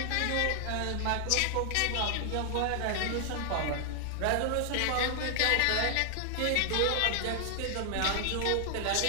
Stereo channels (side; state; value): both; different; correlation 0.00